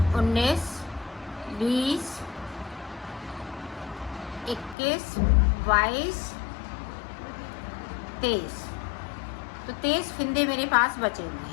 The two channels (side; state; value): right; drops out; at 4.8 s